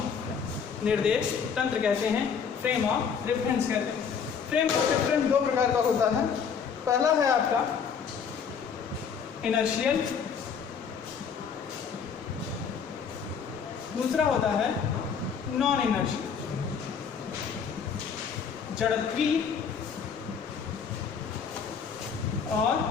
निर्देश तंत्र कहते हैं, फ्रेम ऑफ रेफरेंस कहते हैं। फ्रेम ऑफ रेफरेंस 2 प्रकार का होता है। पहला है आपका इनर्शियल, दूसरा होता है नॉन इनर्शियल, जड़त्वीय और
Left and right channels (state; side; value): quieter; right; 6.6 dB